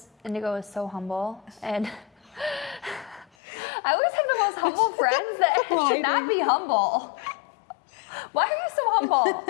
Indigo is so humble. And I always have the most humble friends that should not be humble. Why are you so humble?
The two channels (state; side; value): drops out; right; at 3.2 s